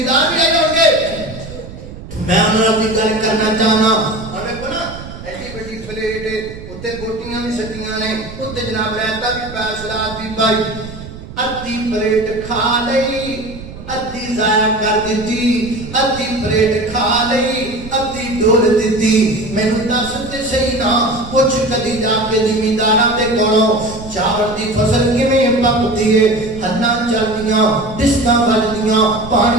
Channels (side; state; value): right; noise; rumble, 14 dB below the sound